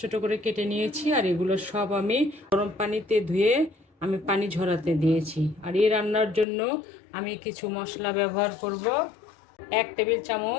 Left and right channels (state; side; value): drops out; right; at 6.5 s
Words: ছোট করে কেটে নিয়েছি, আর এগুলো সব আমি গরম পানিতে ধুয়ে আমি পানি ঝরাতে দিয়েছি। আর এই রান্নার জন্য আমি কিছু মশলা ব্যবহার করব। 1 টেবিল